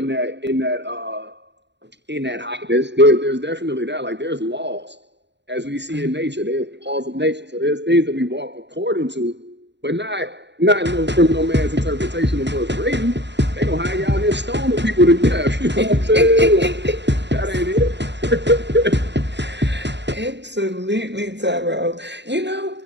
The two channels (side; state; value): left; late; 0.51 ms